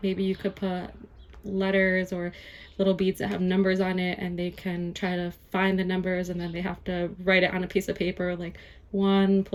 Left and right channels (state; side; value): identical; both; correlation 1.00